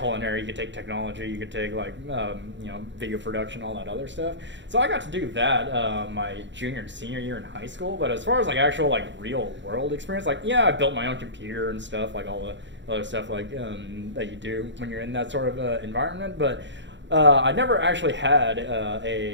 you could take technology, you could take like video production, all that other stuff. So I got to do that my junior and senior year in high school. But as far as like actual like real world experience, like I built my own computer and stuff, like all the other stuff like that you do when you're in that sort of environment. But I never actually had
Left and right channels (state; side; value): late; left; 0.53 ms